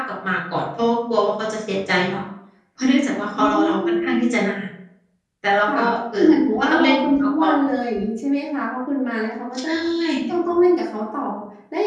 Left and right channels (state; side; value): identical; both; correlation 1.00